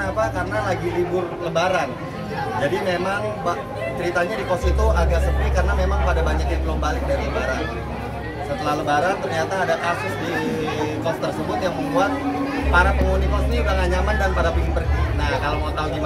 apa? Karena lagi libur Lebaran. Jadi memang ceritanya di kos itu agak sepi karena memang pada banyak yang belum balik dari Lebaran. Setelah Lebaran ternyata ada kasus di kos tersebut yang membuat para penghuni kos ini udah gak nyaman dan pada pingin pergi. Nah kalau mau tahu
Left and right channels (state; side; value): identical; both; correlation 1.00